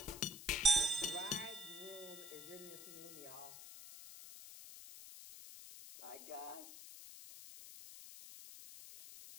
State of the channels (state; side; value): noise; left; hiss, 13 dB below the sound